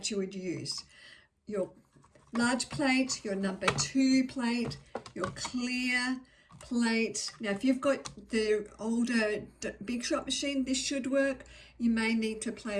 you would use. Your large plate, your number 2 plate, your clear plate. Now if you've got the older Big Shot machine, this should work. You may need to play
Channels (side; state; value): both; identical; correlation 1.00